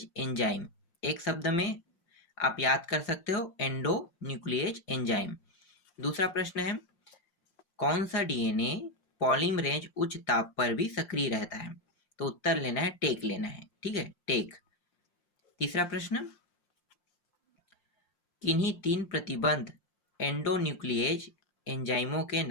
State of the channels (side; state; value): right; late; 5.6 ms